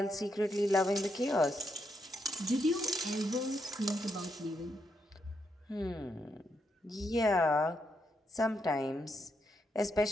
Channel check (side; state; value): both; normal; correlation 0.80